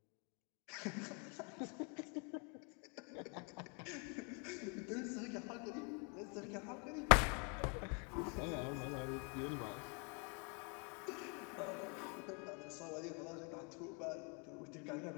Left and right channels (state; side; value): quieter; right; 34.3 dB